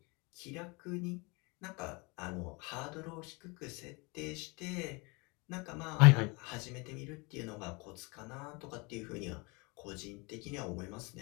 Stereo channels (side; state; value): right; quieter; 28.1 dB